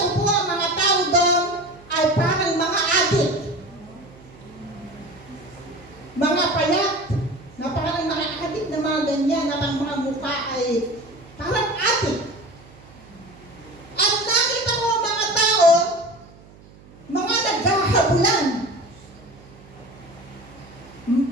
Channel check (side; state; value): right; noise; hum, 23 dB below the sound